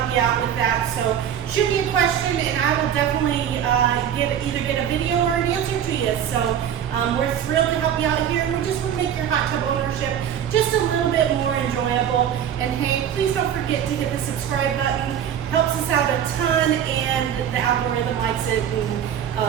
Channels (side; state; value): left; quieter; 9.4 dB